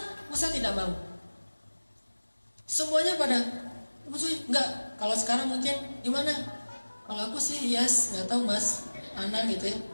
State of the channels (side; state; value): both; inverted; correlation -1.00